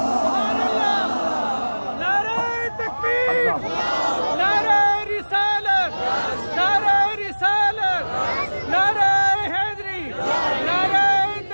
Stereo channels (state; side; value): inverted; both; correlation -1.00